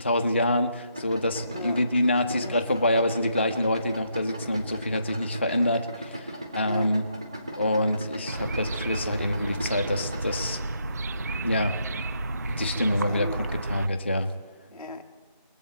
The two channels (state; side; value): inverted; both; correlation -0.76